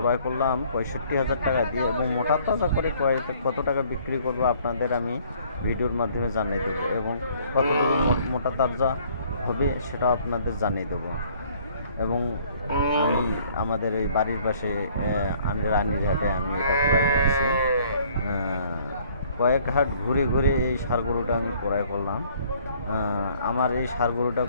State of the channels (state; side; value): inverted; both; correlation -0.59